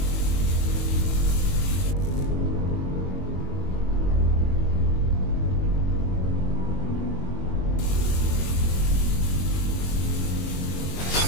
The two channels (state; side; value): late; right; 22 ms